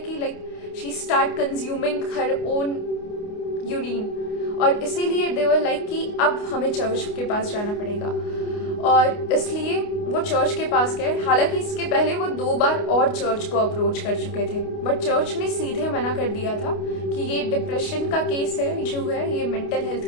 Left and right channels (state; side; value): late; right; 29 ms